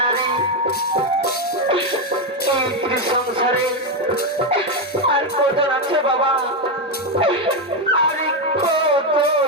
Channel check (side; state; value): both; normal; correlation 0.07